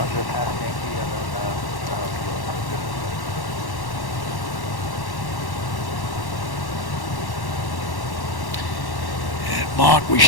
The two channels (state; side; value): late; right; 1.1 ms